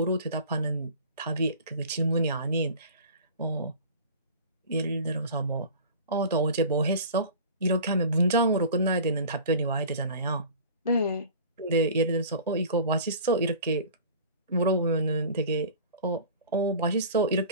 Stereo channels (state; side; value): inverted; both; correlation -0.41